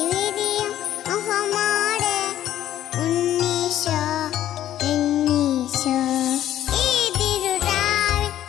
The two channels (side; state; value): right; quieter; 12.2 dB